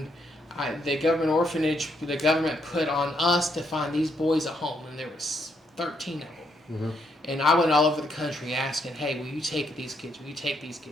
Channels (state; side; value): normal; both; correlation 0.75